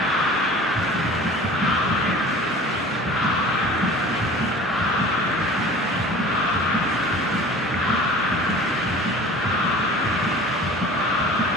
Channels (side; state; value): both; normal; correlation 0.43